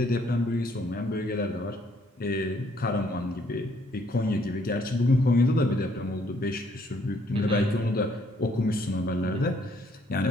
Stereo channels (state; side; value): normal; both; correlation 0.66